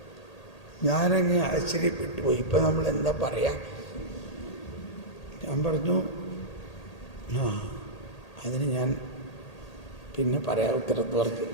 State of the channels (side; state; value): right; late; 1.8 ms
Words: ഞാനങ്ങ് ആശ്ചര്യപ്പെട്ടു പോയി. ഇപ്പം നമ്മൾ എന്താ പറയാ? ഞാൻ പറഞ്ഞു, അതിന് ഞാൻ പിന്നെ പറയാം ഉത്തരത്ത് പറഞ്ഞു.